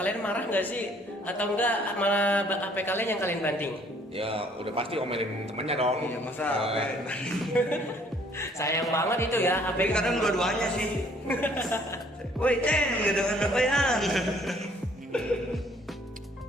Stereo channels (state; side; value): normal; both; correlation 0.61